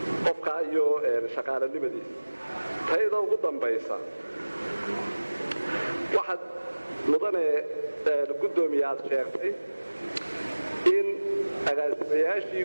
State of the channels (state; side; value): inverted; both; correlation -1.00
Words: qofka iyo shaqaalanimadiisa tayada ugu dambaysa waxaad mudane gudoomiye aad sheegtay in agaasimayaashii